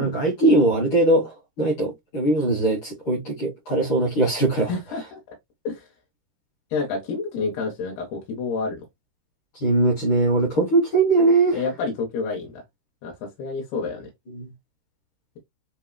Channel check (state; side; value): late; right; 13 ms